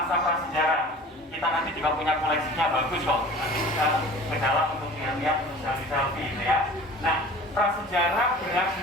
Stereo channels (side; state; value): both; normal; correlation 0.43